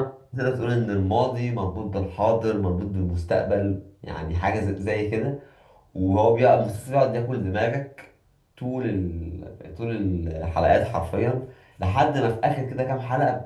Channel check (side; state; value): both; identical; correlation 1.00